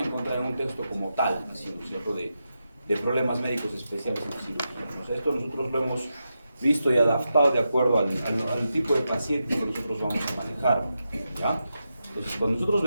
encontrar en un texto como tal, así, ¿no es cierto?, de problemas médicos especiales en cirugía. O sea, esto nosotros lo hemos visto y adaptado de acuerdo al tipo de paciente que nosotros vamos a manejar, ¿ya? Entonces, cuando nosotros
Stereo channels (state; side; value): inverted; both; correlation -0.88